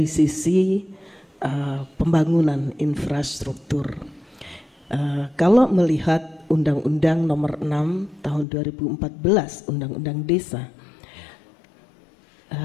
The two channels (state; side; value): drops out; right; at 8.5 s